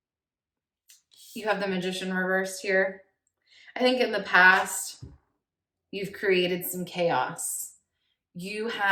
you have the Magician reversed here. I think in the past, you've created some chaos. You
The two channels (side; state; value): both; identical; correlation 1.00